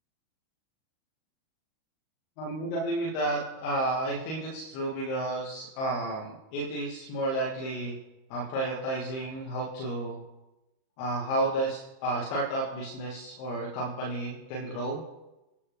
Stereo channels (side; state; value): right; late; 38 ms